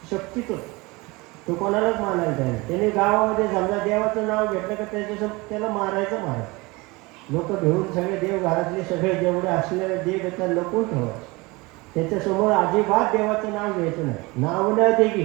शक्तीच, तो कोणालाच मानायला तयार. त्याने गावामध्ये समजा देवाचं नाव घेतलं का त्याला मारायचं महाराज. लोक घेऊन सगळे देव घरातले सगळे जेवढे असलेले देव येतात लपून ठेवायचे. त्याच्यासमोर अजिबात देवाचं नाव घ्यायचं नाही. नाव न दे की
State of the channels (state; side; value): quieter; left; 24.1 dB